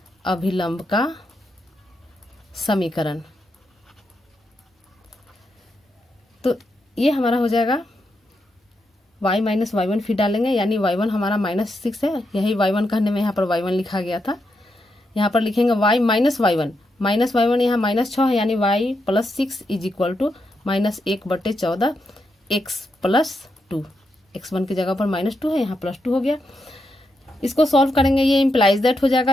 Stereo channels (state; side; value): normal; both; correlation 0.83